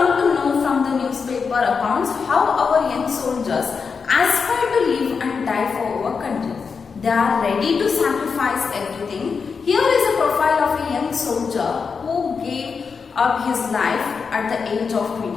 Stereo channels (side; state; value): right; quieter; 5.5 dB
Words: to know from the newspaper accounts how our young soldiers aspire to live and die for our country. They are ready to sacrifice everything. Here is a profile of a young soldier who gave up his life at the age of